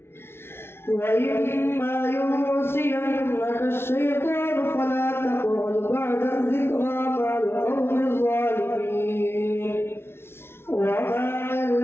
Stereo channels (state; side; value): late; right; 0.12 ms